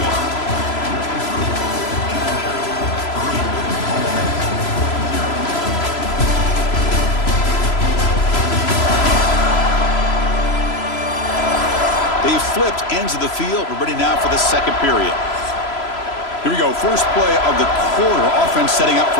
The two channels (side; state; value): right; late; 3.0 ms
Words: They've flipped ends of the field. We're ready now for the second period. Here we go, first play of the quarter. Offense setting up